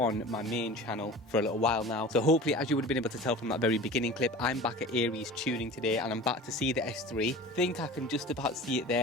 my main channel for a little while now. So hopefully, as you would have been able to tell from that very beginning clip, I'm back at ARES tuning today, and I'm back to see the S3. Think I can just about see it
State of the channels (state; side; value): normal; both; correlation 0.38